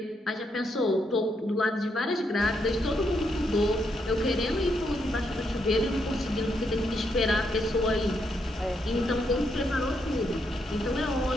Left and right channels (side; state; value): both; normal; correlation 0.78